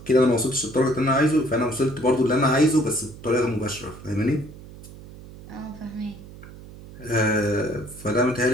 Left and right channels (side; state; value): right; noise; hum, 17 dB below the sound